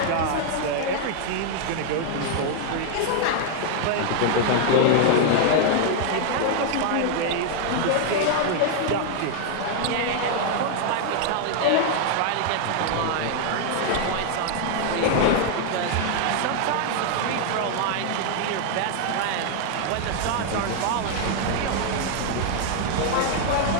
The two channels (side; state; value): both; different; correlation 0.00